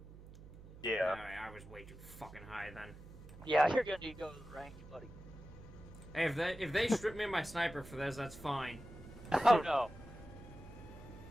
Yeah. Alright, I was way too fucking high then. Yeah, you're gonna need to go to the range, buddy. Hey, if they strip me of my sniper for this, that's fine. Oh no.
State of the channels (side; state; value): right; noise; hum, 17 dB below the sound